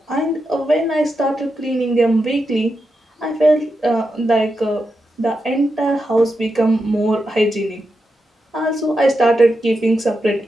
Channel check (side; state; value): both; normal; correlation 0.87